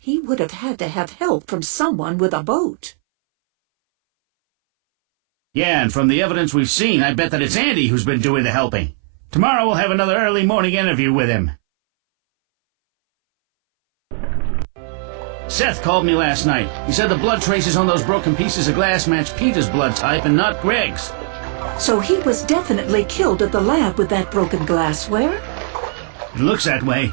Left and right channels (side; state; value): left; silent; 63 dB below the other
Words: would have had to have help from someone with a boat. Yeah, and from the evidence we've seen, I bet that it's Andy who's been doing the helping. Tomorrow we'll have another early morning interview with him. Seth called me last night. He said the blood traces on those broken pieces of glass match Peter's blood type and not Greg's. So he was definitely killed at the lab with that broken glassware? It looks that